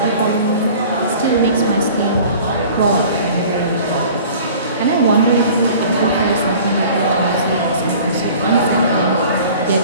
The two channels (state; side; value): inverted; both; correlation -0.46